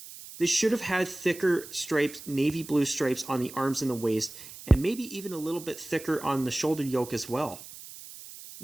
They should have had thicker stripes, navy blue stripes on the arms and the waist, and maybe even a little bit thicker on the shoulder yoke as well.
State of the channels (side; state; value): right; noise; hiss, 15 dB below the sound